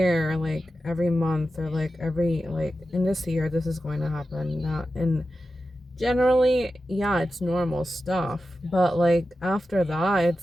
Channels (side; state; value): both; normal; correlation 0.92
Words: like every month or like every like in this year this is going to happen. Not and generally, yeah, it's normal stuff, but like after that,